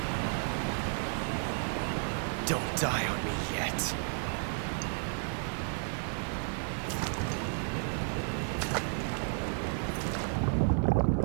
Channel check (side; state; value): left; silent; 56 dB below the other